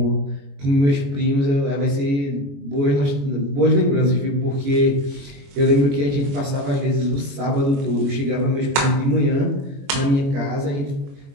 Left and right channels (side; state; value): left; late; 21 ms